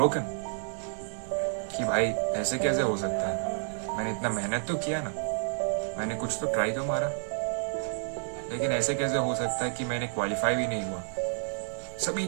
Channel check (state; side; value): silent; left; digital silence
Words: कि भाई ऐसे कैसे हो सकता है? मैंने इतना मेहनत तो किया ना, मैंने कुछ तो ट्राई तो मारा, लेकिन ऐसे कैसे हो सकता है कि मैंने क्वालिफाई भी नहीं हुआ? सभी